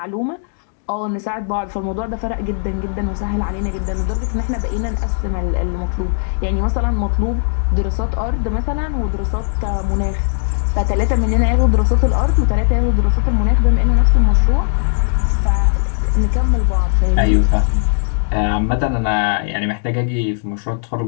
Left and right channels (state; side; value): silent; right; digital silence